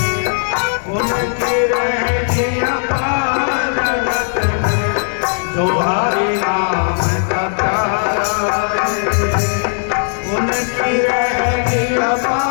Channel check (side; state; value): right; silent; digital silence